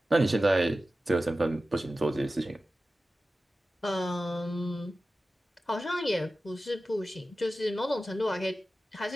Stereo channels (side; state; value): both; normal; correlation 0.95